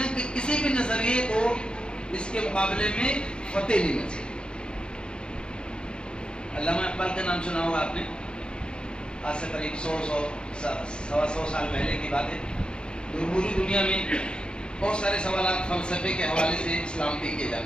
کے کسی بھی نظریے کو اس کے مقابلے میں فتح نہیں مل سکتی. علامہ اقبال کا نام سنا ہوگا آپ نے، آج سے قریب 100 سال پہلے کی بات ہے. پوری دنیا میں بہت سارے سوالات فلسفے کے حوالے سے اسلام پہ کیے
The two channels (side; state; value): right; late; 0.051 ms